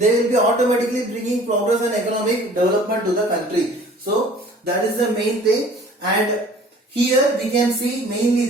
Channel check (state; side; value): normal; both; correlation 0.50